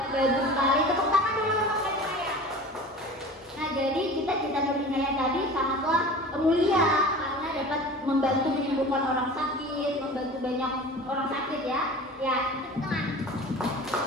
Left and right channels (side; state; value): both; normal; correlation 0.38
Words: bagus sekali. Tepuk tangan dulu untuk Nur Inaya. Nah, jadi cita-cita Nur Inaya tadi sangatlah mulia karena dapat membantu menyembuhkan orang sakit, membantu banyak orang sakit ya. Ya, tepuk tangan.